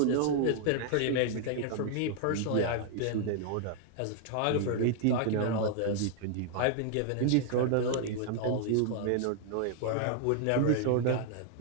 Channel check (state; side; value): different; both; correlation 0.00